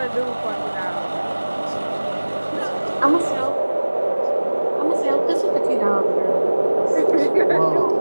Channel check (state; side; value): inverted; both; correlation -1.00